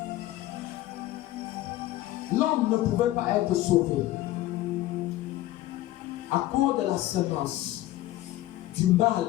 l'homme ne pouvait pas être sauvé à cause de la semence du mal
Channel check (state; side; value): quieter; right; 15.7 dB